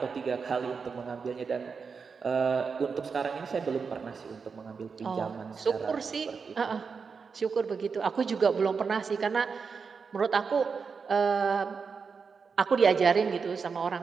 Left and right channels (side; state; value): left; quieter; 5.4 dB